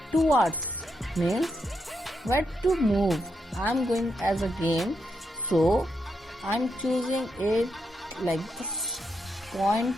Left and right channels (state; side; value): normal; both; correlation 0.82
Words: towards, means where to move. I'm going as a game, so I'm choosing it like this, point